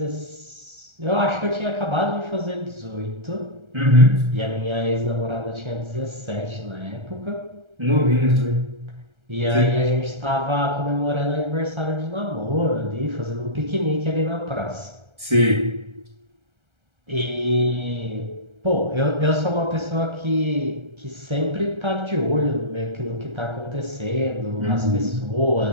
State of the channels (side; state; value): left; late; 1.3 ms